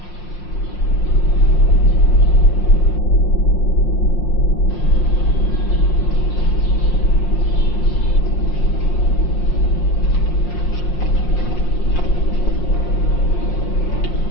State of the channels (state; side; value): late; right; 5.6 ms